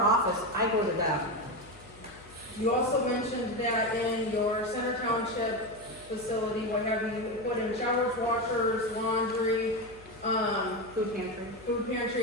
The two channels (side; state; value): left; noise; hum, 22 dB below the sound